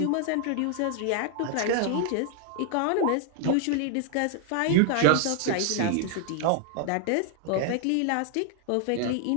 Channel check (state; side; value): different; both; correlation 0.00